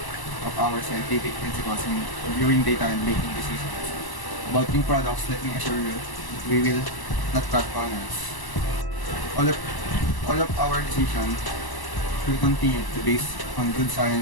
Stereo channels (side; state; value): right; late; 1.0 ms